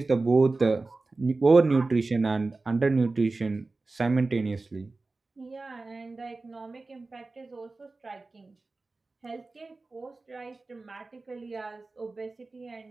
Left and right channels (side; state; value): left; quieter; 3.5 dB